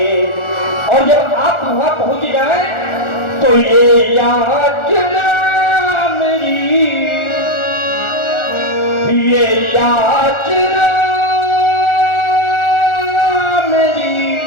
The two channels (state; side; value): late; right; 1.4 ms